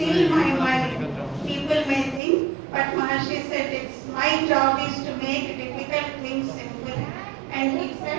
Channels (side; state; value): left; drops out; at 2.2 s